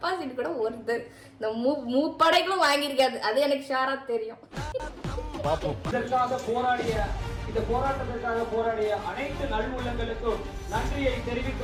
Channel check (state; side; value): identical; both; correlation 1.00